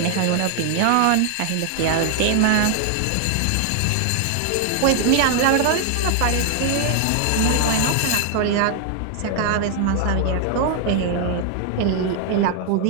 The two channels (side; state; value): both; different; correlation 0.00